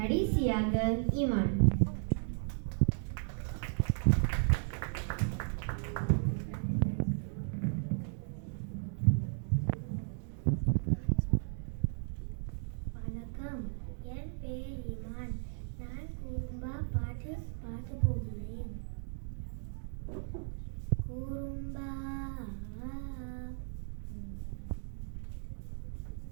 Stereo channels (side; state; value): left; silent; digital silence